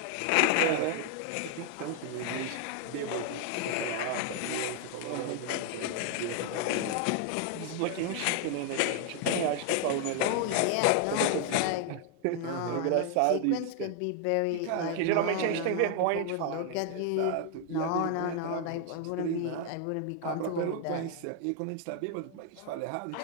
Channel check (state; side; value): different; both; correlation 0.00